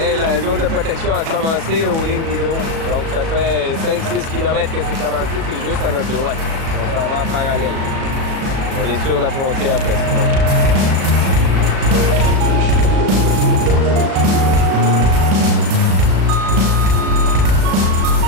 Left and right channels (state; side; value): late; left; 37 ms